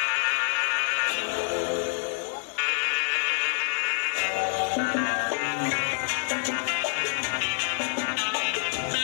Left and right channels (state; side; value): silent; right; digital silence